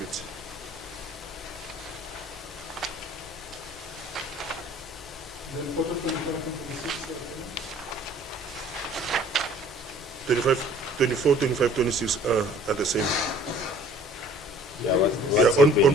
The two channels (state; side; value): normal; both; correlation 0.52